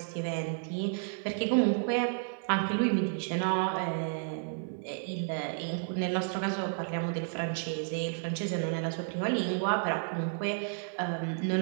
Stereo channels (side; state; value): left; silent; 57 dB below the other